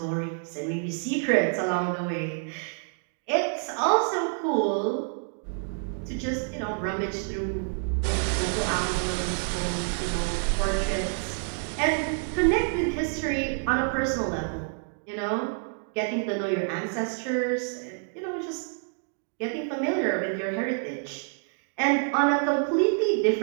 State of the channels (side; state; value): left; silent; 55 dB below the other